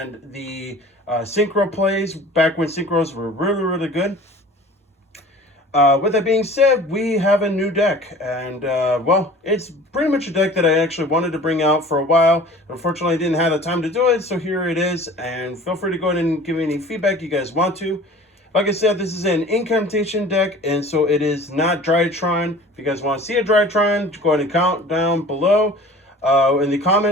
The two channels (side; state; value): both; normal; correlation 0.45